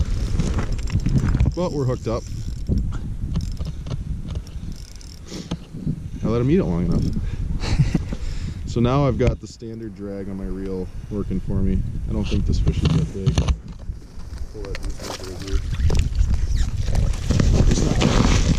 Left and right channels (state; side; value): identical; both; correlation 1.00